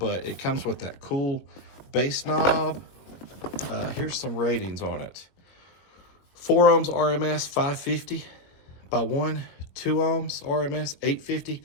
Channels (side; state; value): right; late; 21 ms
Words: it comes with that cool bass knob. Here's some ratings on it. 4 ohms RMS 550 by 1, 2 ohms RMS 850,